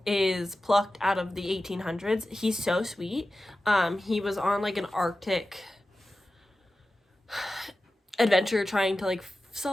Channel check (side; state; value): both; normal; correlation 0.94